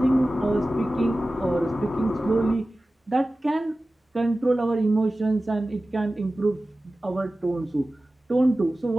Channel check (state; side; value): normal; both; correlation 0.96